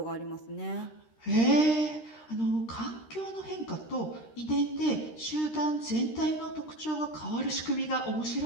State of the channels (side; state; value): right; late; 13 ms